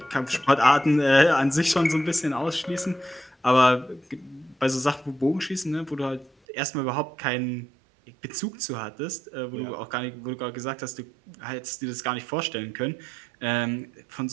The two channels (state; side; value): drops out; left; at 6.3 s